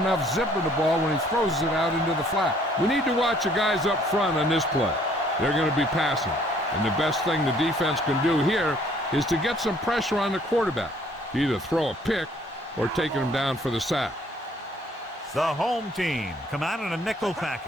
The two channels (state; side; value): normal; both; correlation 0.61